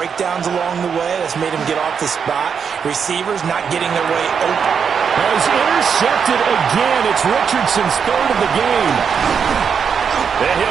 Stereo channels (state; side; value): quieter; left; 6.7 dB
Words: along the way. That's made him get off the spot. Receivers not getting their way open. Well, he's intercepted again. It's Richardson's third of the game. And